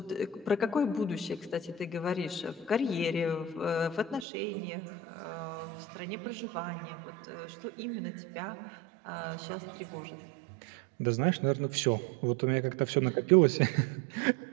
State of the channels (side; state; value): left; drops out; at 4.2 s